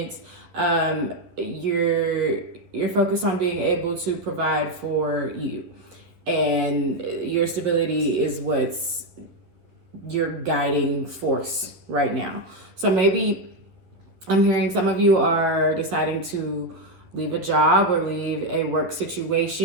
You're focused on being able to provide for you, and your stability is what's your guiding force right now. So maybe I'm hearing some of you are deciding to leave a job or leave a work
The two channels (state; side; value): late; left; 11 ms